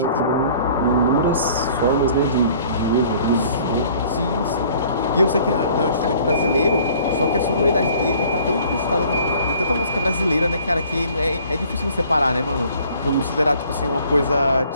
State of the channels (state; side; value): inverted; both; correlation -0.54